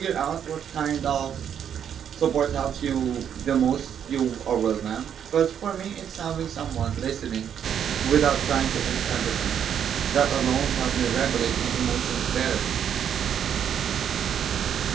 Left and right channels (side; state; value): left; quieter; 8.7 dB